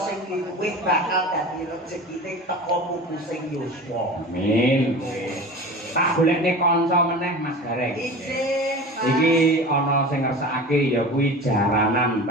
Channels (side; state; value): both; normal; correlation 0.34